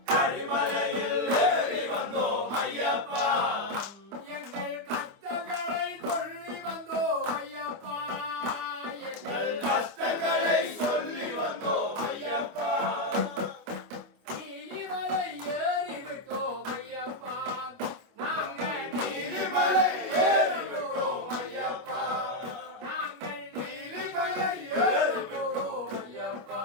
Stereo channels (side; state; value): left; late; 25 ms